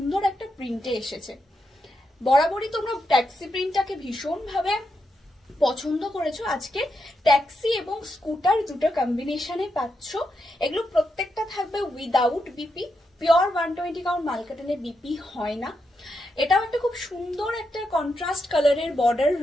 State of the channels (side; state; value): both; normal; correlation 0.84